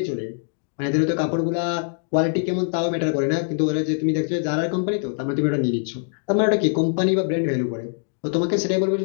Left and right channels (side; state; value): right; silent; digital silence